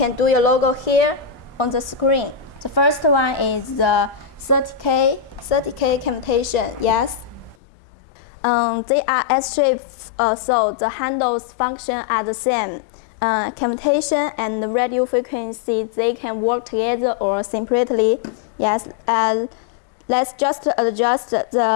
do your logo here on the screen. The first one is the 30K cavitation. Yes. They are S shape, so the handles function are the same. Cavitation and the radio frequency, they can work together or separately. Yes. Yeah. And let's just adjust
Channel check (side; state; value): right; drops out; at 7.6 s